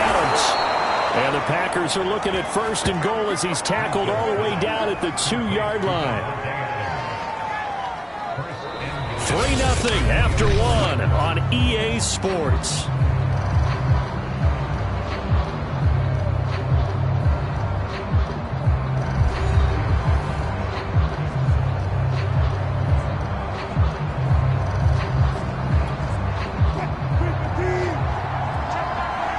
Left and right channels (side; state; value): both; identical; correlation 1.00